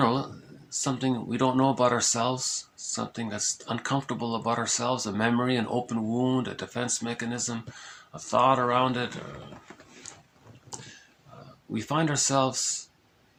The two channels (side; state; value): both; identical; correlation 1.00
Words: something we don't know about ourselves, something that's uncomfortable about ourselves, a memory, an open wound, a defense mechanism, a thought around it. We find ourselves